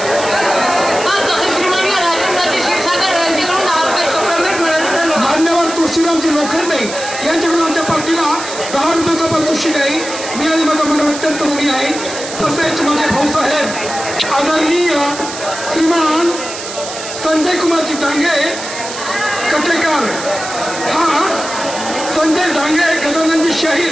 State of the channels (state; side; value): noise; right; hiss, 9 dB below the sound